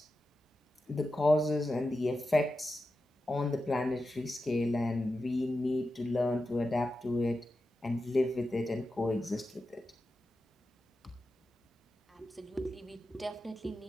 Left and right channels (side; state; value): both; normal; correlation 0.91